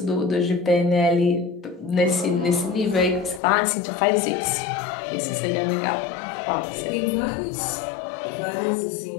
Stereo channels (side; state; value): right; drops out; at 3.4 s